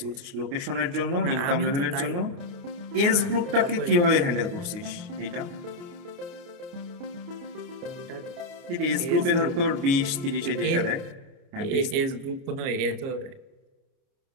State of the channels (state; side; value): late; left; 29 ms